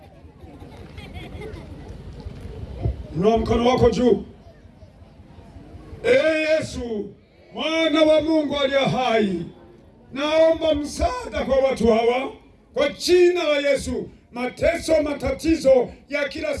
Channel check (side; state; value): both; identical; correlation 1.00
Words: Inua mkono wako juu. Yesu, Mwana wa Mungu aliye hai, naomba msaada kwa watu hawa kwa jina la Yesu. Mateso, matatizo ya kila